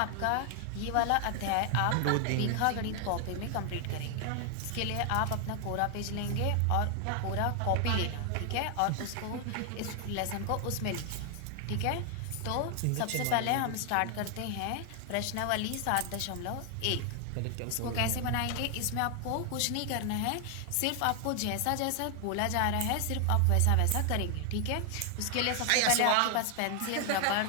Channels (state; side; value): different; both; correlation 0.00